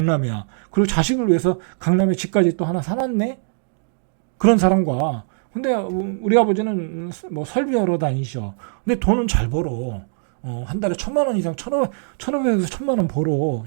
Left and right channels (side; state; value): left; silent; digital silence